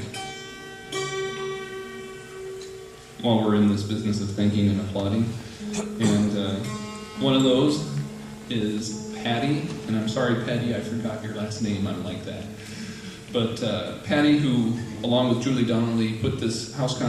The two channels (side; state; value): both; identical; correlation 1.00